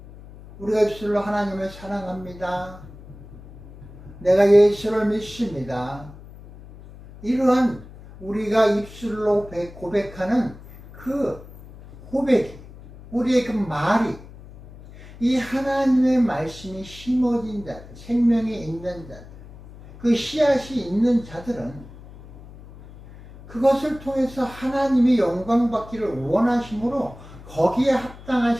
우리가 입술로 하나님을 사랑합니다. 내가 예수를 믿습니다. 이러한 우리가 입술로 고백하는 그 고백이, 우리의 그 말이 이 하나님의 말씀이 심어진 자들, 생명이 있는 자들, 그 씨앗이 있는 자들은 그것을 통해서 하나님이 영광 받기를 원하심으로 거기에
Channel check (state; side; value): noise; left; hum, 18 dB below the sound